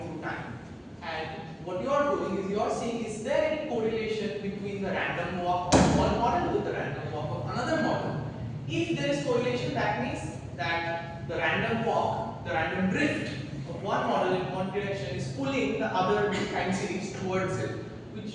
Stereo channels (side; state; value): both; identical; correlation 1.00